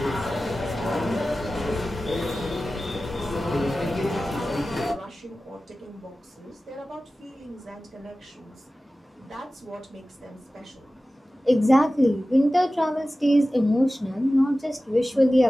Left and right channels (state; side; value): normal; both; correlation 0.96